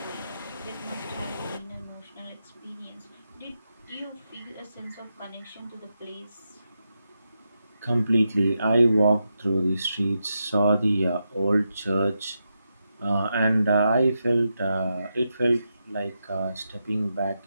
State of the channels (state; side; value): inverted; both; correlation -0.86